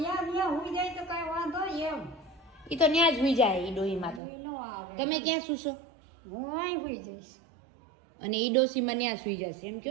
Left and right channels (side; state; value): left; drops out; at 4.2 s